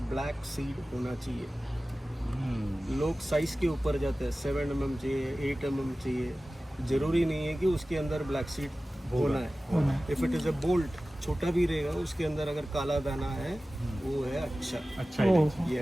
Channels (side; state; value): both; normal; correlation 0.96